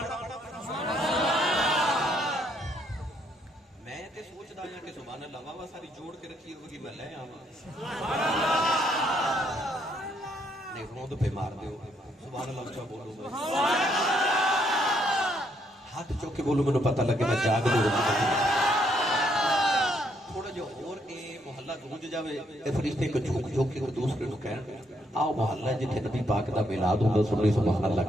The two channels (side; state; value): both; normal; correlation 0.72